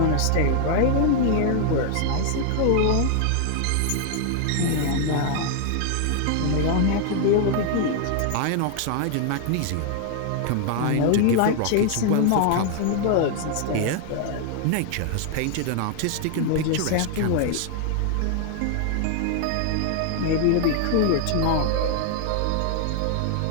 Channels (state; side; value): different; both; correlation 0.00